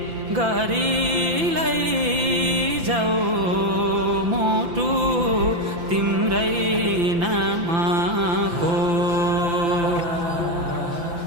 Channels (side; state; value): left; late; 5.9 ms